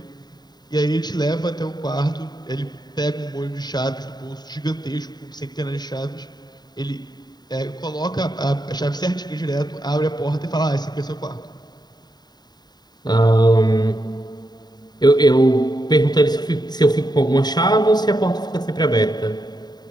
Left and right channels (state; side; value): late; right; 0.20 ms